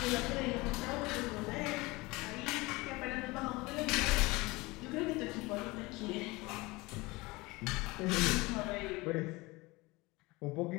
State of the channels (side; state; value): right; quieter; 22.8 dB